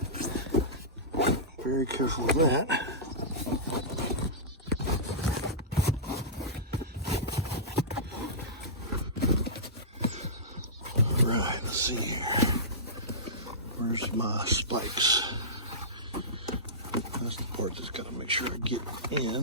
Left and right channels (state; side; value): normal; both; correlation -0.19